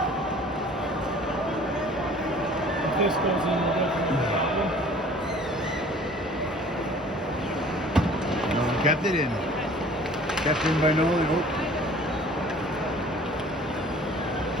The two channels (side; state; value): both; normal; correlation 0.49